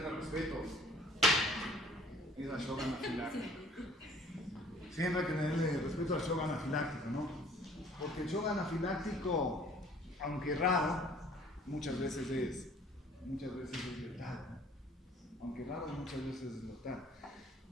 el respeto es al shock anafiláctico. Siempre hay que tenerle respeto al shock anafiláctico, ¿no? Porque el shock anafiláctico, aunque raro, muchas veces es letal. Aunque raro, muchas veces es letal.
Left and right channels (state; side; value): normal; both; correlation 0.54